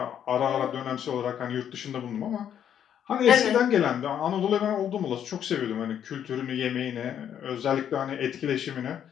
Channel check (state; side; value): quieter; right; 9.4 dB